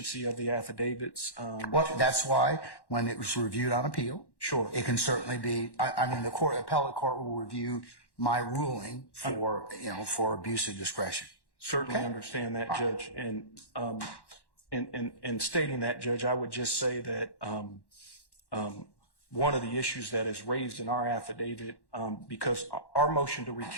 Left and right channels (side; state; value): right; late; 1.1 ms